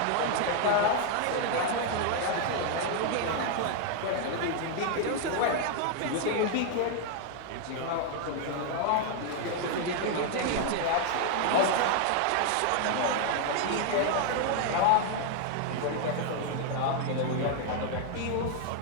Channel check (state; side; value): different; both; correlation 0.00